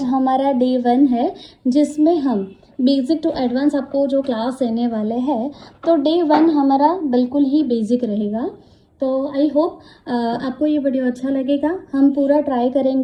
हमारा डे 1 है जिसमें हम बेसिक टू एडवांस आपको जो क्लास देने वाले हैं। तो डे 1 हमारा बिल्कुल ही बेसिक रहेगा। तो आई होप आपको ये वीडियो अच्छा लगेगा। हम पूरा ट्राई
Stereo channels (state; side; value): identical; both; correlation 1.00